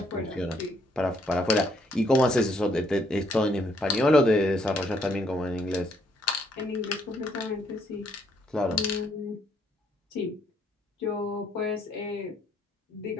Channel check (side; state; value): both; normal; correlation 0.70